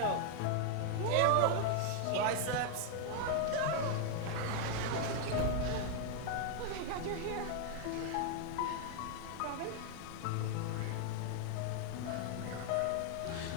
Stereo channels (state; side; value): different; both; correlation 0.00